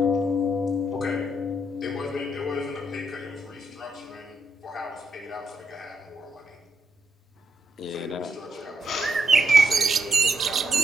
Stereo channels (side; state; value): both; normal; correlation 0.78